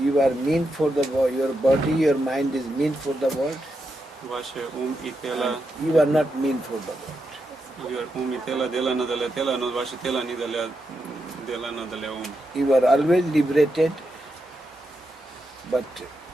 are meant for the world, your body, your mind is meant for the world, Ваше ум и тело, and you are not meant for the world. ум и тело делано для тела, но ваше тело не делано для ум. You are always liberated, but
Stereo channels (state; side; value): normal; both; correlation 0.85